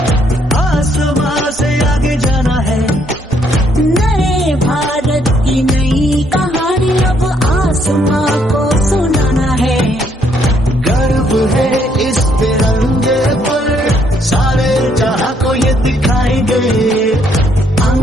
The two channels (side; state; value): both; normal; correlation 0.70